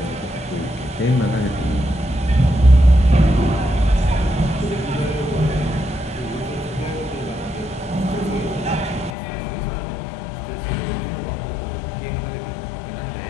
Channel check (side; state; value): right; drops out; at 9.2 s